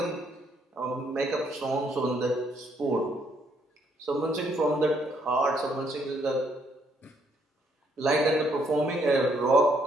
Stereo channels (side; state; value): both; normal; correlation 0.70